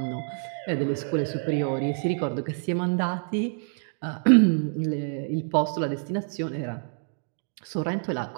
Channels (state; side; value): silent; left; 60 dB below the other